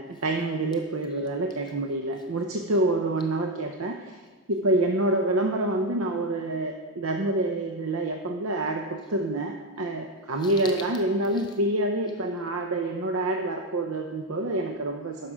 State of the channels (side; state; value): both; normal; correlation 0.08